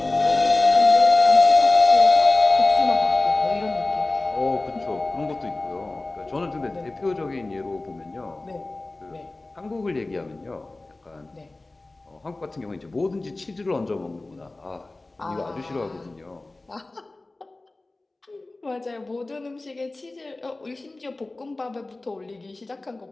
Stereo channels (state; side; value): quieter; right; 3.0 dB